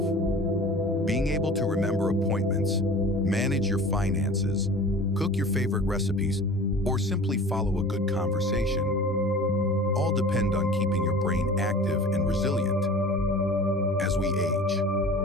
Being able to remember appointments, manage your finances, cook your favorite recipes, or simply follow a good conversation all depend on keeping your brain active and resilient. As we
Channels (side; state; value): both; normal; correlation 0.41